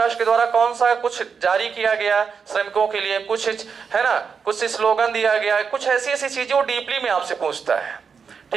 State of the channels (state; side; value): quieter; left; 6.0 dB